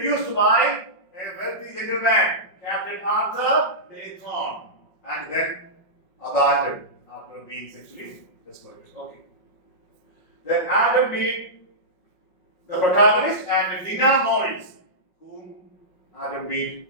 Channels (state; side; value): late; right; 5.6 ms